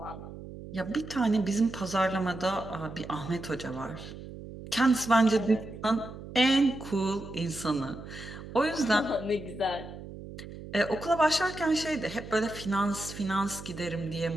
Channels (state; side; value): noise; right; hum, 13 dB below the sound